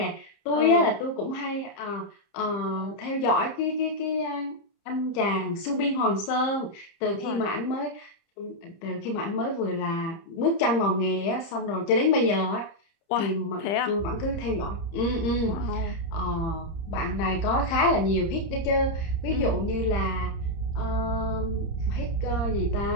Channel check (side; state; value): right; late; 30 ms